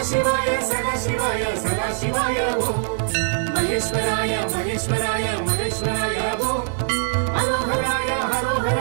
சிவாய சதா சிவாய சதா சிவாய ஓம் மகேஸ்வராய மகேஸ்வராய மகேஸ்வராய ஓம் ஹரோஹராய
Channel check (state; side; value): silent; left; digital silence